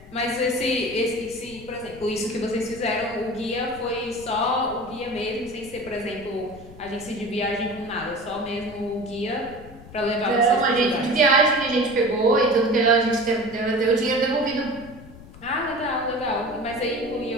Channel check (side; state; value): left; noise; rumble, 18 dB below the sound